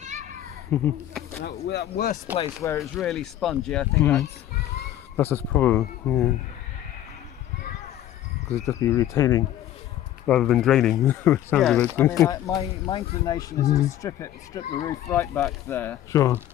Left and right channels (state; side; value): quieter; right; 12.4 dB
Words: That worst place where it's really spongy, I think that's the problem. Because it just be retaining rather than draining. Sounds I mean, my inclination is to strip the roof right back there. Sure,